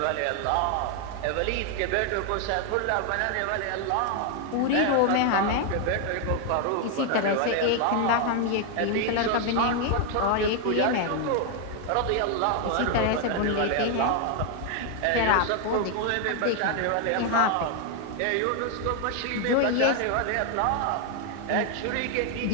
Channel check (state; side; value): different; both; correlation 0.01